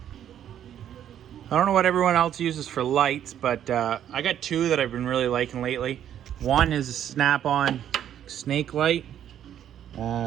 I don't know what everyone else uses for lights, but I got two that I've been really liking lately. One is a snap-on snake light.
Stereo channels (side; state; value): left; quieter; 10.2 dB